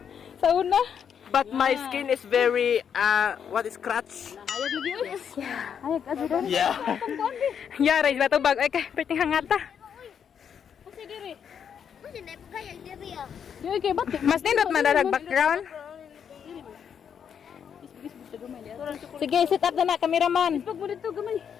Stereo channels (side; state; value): right; quieter; 7.8 dB